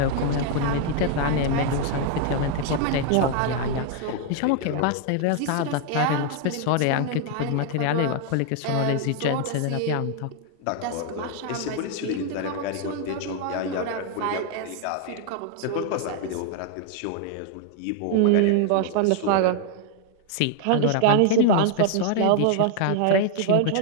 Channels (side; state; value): both; different; correlation 0.00